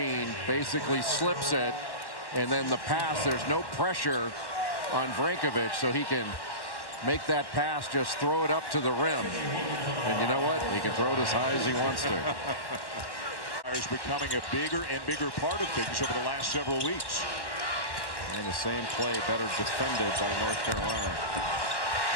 basically slips it, and then the pass, there's no pressure on Brankovic, so he can make that pass, just throw it up to the rim. And you know what? He can throw it as high as he wants to. Is becoming a bigger and bigger part of things over the last several weeks. And the same play better defended by North Carolina.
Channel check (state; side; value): late; right; 1.1 ms